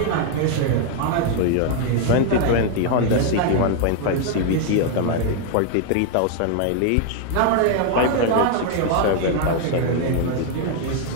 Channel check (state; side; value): different; both; correlation 0.00